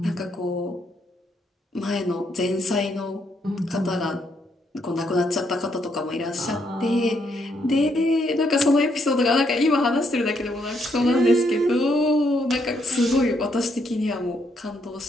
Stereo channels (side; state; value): both; normal; correlation 0.74